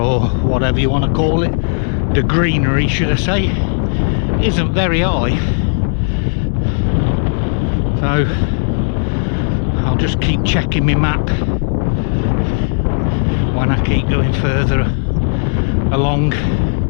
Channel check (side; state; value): right; silent; digital silence